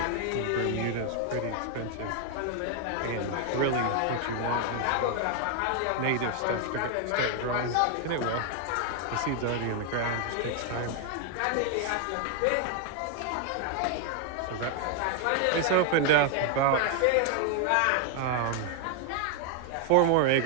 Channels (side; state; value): both; different; correlation 0.00